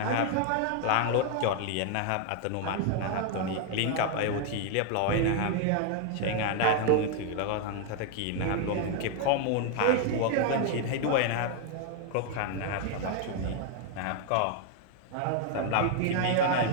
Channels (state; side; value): different; both; correlation 0.00